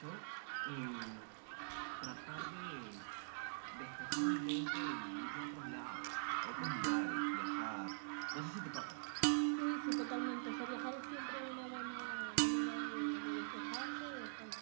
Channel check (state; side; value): silent; left; digital silence